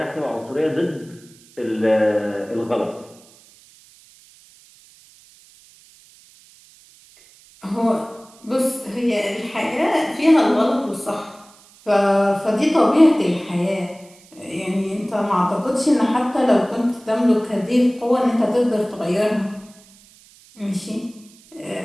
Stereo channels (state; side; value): noise; right; hiss, 26 dB below the sound